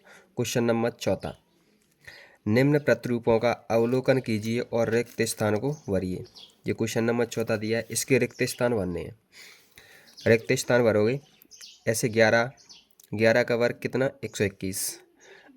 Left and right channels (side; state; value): both; identical; correlation 1.00